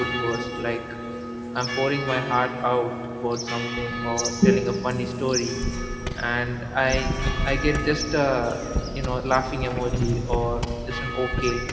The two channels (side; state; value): both; identical; correlation 1.00